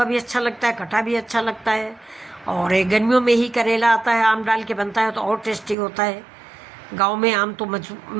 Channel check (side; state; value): left; drops out; at 5.8 s